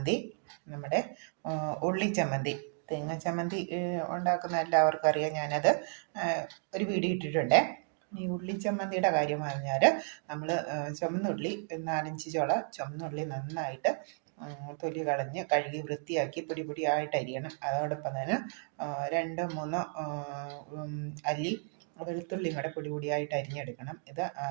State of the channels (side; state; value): left; silent; 56 dB below the other